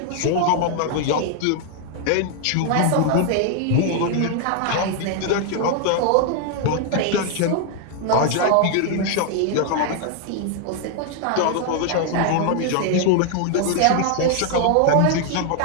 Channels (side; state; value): both; different; correlation 0.00